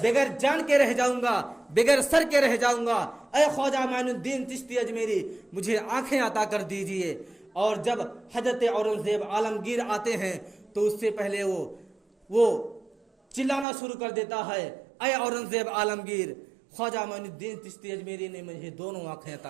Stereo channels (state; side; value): drops out; left; at 13.7 s